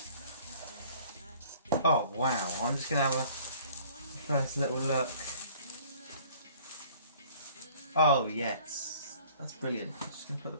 Oh wow, I'm just going to have a first little look. Oh yes, that's brilliant. I'm just going to put the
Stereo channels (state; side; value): inverted; both; correlation -0.53